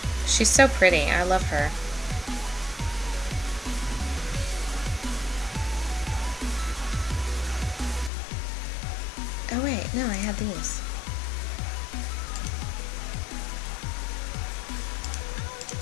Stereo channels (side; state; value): right; drops out; at 8.1 s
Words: She's so pretty. I love her. Oh wait, no, I had these.